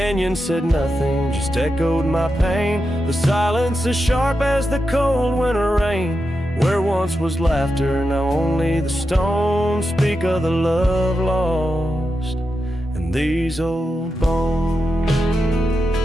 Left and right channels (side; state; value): both; normal; correlation 0.88